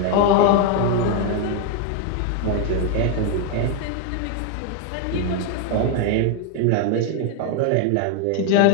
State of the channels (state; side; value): different; both; correlation 0.01